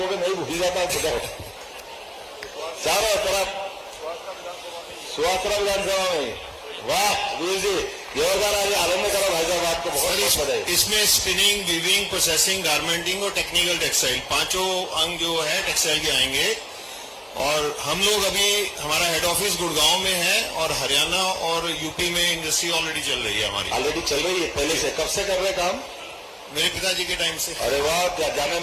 हो गए, नहीं भूल जाता किधर। चारों तरफ सुहासरा विधानसभा में। वाह वीर जी, जोरदार आज आनंद करो भाई साहब, आपको बहुत बधाई। इसमें स्पिनिंग, वीविंग, प्रोसेसिंग, गारमेंटिंग और टेक्निकल टेक्सटाइल, पांचों अंग जो है टेक्सटाइल के आएंगे। और हम लोग अभी, हमारा हेड ऑफिस गुड़गांव में है और हरियाणा और यूपी में इंडस्ट्री ऑलरेडी चल रही है हमारी। ऑलरेडी चल रही है पहले से? कब से कर रहे काम? मेरे पिताजी के टाइम से। अरे वाह, क्या जाने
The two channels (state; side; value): identical; both; correlation 1.00